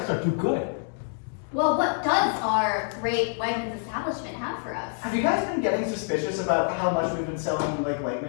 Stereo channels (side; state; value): right; silent; 60 dB below the other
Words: are too good. Well, what does our great Wegmans establishment have for us? Have you guys been getting suspicious about how much we've been selling like